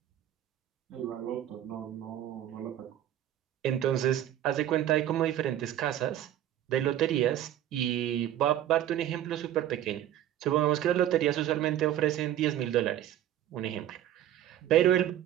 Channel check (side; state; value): left; quieter; 11.9 dB